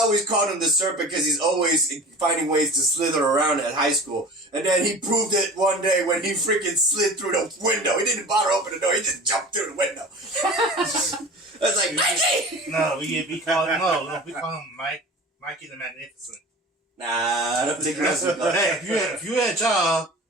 always called him the Serpent because he's always finding ways to slither around at high school. And then he proved it one day when he freaking slid through the window. He didn't bother open the door. He just jumped through the window. I was like, Mikey! No, we call him Mikey the Magnificent. Nah, I don't think that's what Hey, if you had a job,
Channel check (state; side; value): normal; both; correlation 0.38